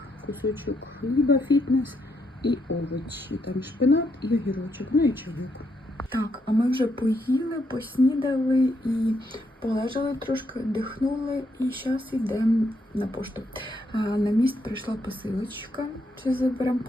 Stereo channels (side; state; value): both; normal; correlation 0.77